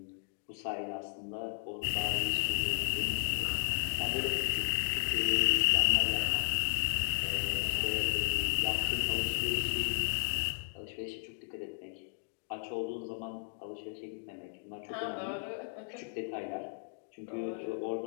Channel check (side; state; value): right; silent; 55 dB below the other